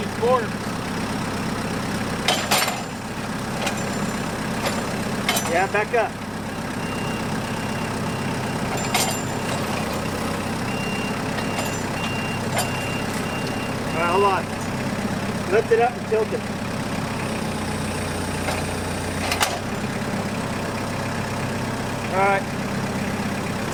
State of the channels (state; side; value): identical; both; correlation 1.00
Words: forks. Yeah, back up. All right, hold on. Lift it up and tilt it. All right.